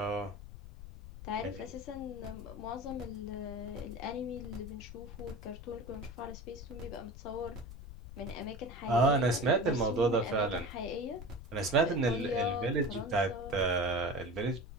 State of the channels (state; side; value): noise; left; rumble, 13 dB below the sound